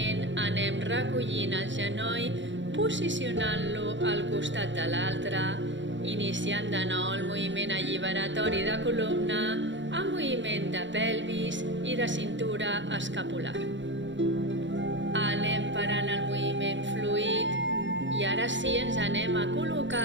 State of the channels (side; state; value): left; late; 0.54 ms